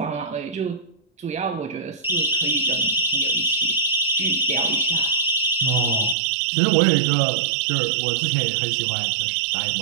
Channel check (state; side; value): drops out; left; at 6.2 s